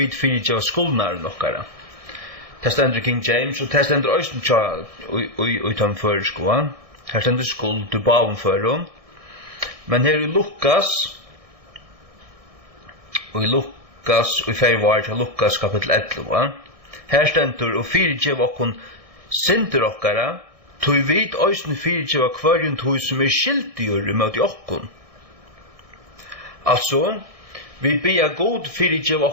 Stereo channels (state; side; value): late; left; 1.6 ms